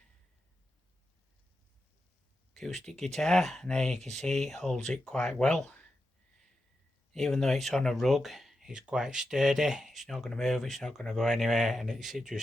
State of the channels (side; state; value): both; normal; correlation 0.89